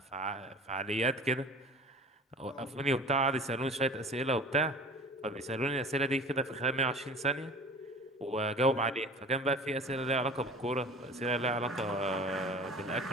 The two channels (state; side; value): normal; both; correlation 0.41